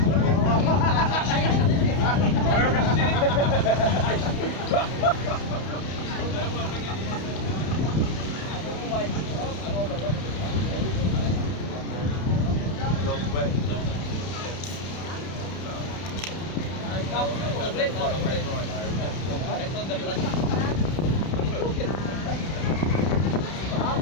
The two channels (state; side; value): late; right; 31 ms